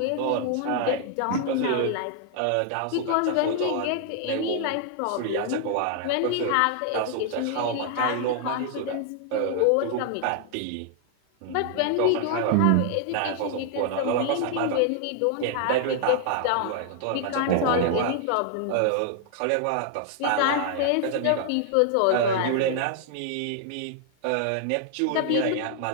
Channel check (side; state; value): both; different; correlation 0.00